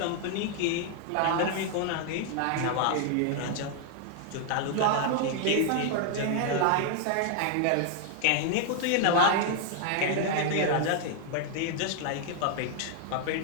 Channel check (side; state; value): both; different; correlation 0.00